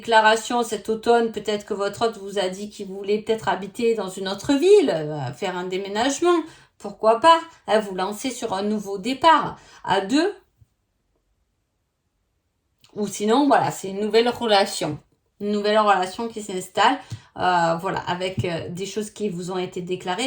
cet automne, peut-être que votre hôte vous a dit qu'il voulait peut-être habiter dans une autre ville, faire un déménagement, pourquoi pas, vous lancer sur un nouveau départ à deux. Ou sinon, voilà, c'est une nouvelle relation qui s'installe, voilà, avec des choses qui vous ont été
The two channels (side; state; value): both; identical; correlation 1.00